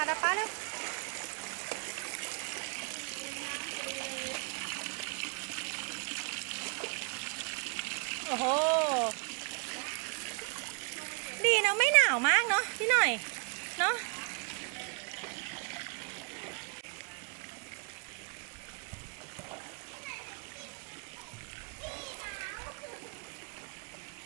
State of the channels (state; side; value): quieter; left; 38.1 dB